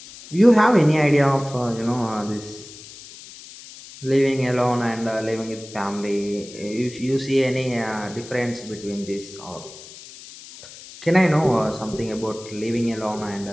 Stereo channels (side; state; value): left; noise; hiss, 17 dB below the sound